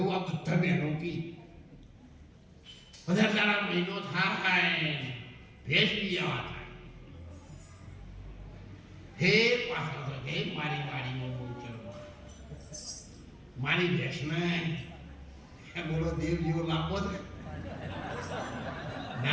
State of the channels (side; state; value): both; identical; correlation 1.00